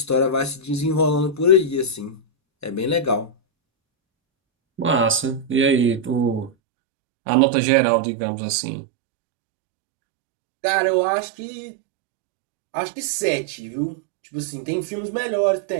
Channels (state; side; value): drops out; left; at 6.5 s